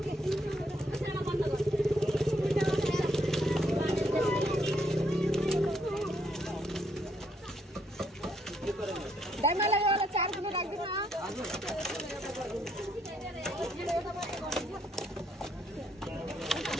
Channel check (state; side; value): normal; both; correlation 0.72